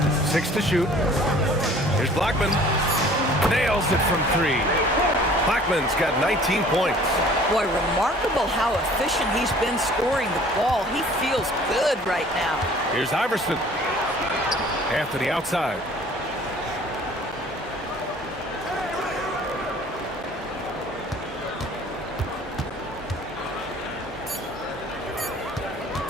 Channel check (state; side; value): normal; both; correlation 0.51